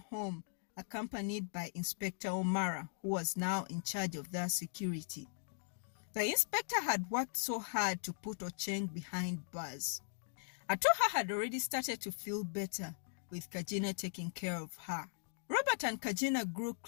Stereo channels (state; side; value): silent; right; digital silence